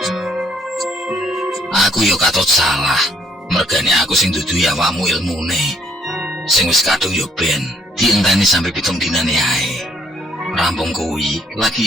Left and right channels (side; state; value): both; normal; correlation 0.67